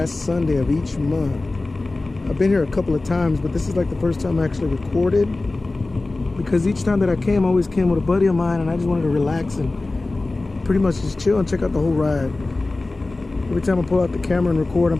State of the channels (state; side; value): quieter; right; 3.2 dB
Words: Sunday of each month. I've been here a couple of times, but this is like the first time I actually recorded. Because each time that I came, I always came with a buddy of mine and I just wanted to relax and pretty much just chill and check out the whole ride. Every time I pull out the camera and record,